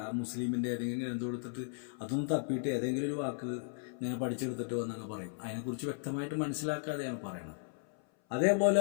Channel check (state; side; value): silent; right; 54 dB below the other